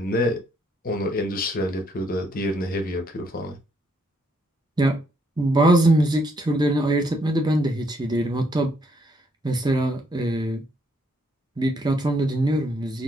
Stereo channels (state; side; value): normal; both; correlation 0.72